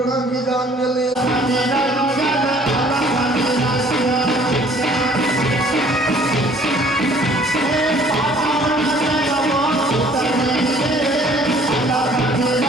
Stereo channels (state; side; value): normal; both; correlation 0.56